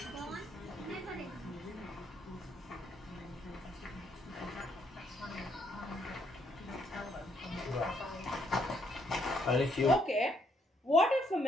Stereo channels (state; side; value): normal; both; correlation 0.72